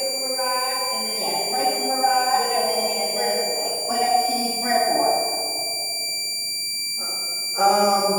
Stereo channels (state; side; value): identical; both; correlation 1.00